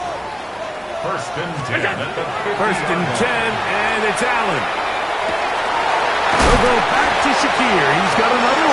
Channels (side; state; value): both; identical; correlation 1.00